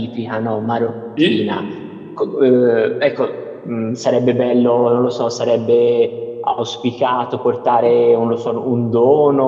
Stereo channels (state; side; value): identical; both; correlation 1.00